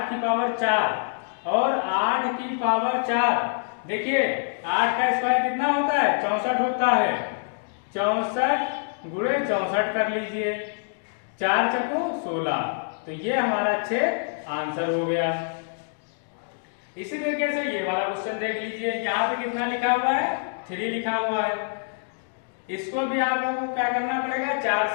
की पावर 4 और 8 की पावर 4, देखिए 8 का स्क्वायर कितना होता है, 64 होता है। 64 गुणे 64 कर लीजिए, 4 चौको 16, तो ये हमारा 6 आंसर हो गया। इसी तरीके से ये वाला क्वेश्चन देख लीजिए, यहाँ पे कितना लिखा हुआ है, 3 लिखा हुआ है। इसको भी आप लोगों को क्या करना पड़ेगा, 4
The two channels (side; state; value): right; silent; digital silence